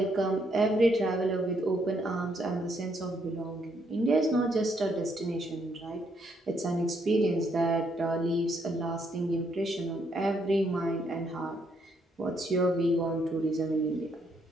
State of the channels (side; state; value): both; normal; correlation 0.73